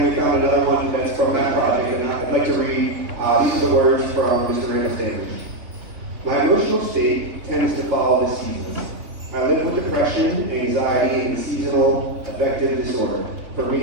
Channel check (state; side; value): late; left; 3.5 ms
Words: we found another one that's from that project, and I'd like to read, these are the words from Mr. Randall Standards. My emotional state tends to follow the seasons. I live with depression, anxiety, and seasonal affective disorder. For